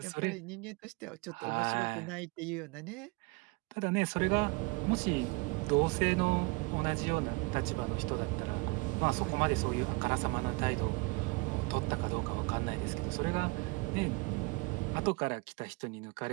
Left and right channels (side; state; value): left; quieter; 27.4 dB